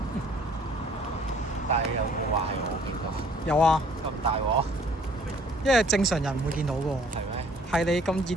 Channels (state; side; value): normal; both; correlation 0.57